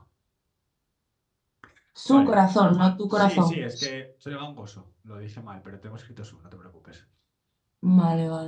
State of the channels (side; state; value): both; identical; correlation 1.00